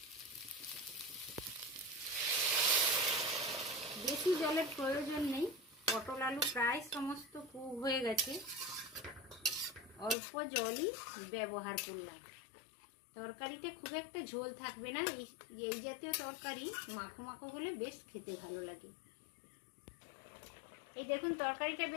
বেশি জলের প্রয়োজন নেই, পটল আলু প্রায় সমস্ত কুক হয়ে গেছে, অল্প জলই ব্যবহার করলাম। তরকারিটা খুব একটা ঝোল থাকবে না, এই জাতীয় তরকারি মাখো মাখো হলে বেশ খেতে ভালো লাগে। এই দেখুন তরকারিটা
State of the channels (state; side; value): drops out; right; at 10.2 s